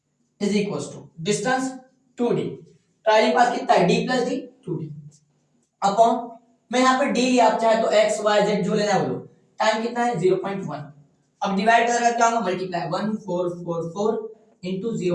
is equal to distance 2d, travelling path कितना है, d plus D, 2d, upon, मैं यहाँ पर d लिया, आप चाहे तो x y z जो लेना है बोलो, टाइम कितना है 0.1, अब डिवाइड करेगा क्या होगा, multiply 1444 into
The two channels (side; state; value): both; identical; correlation 1.00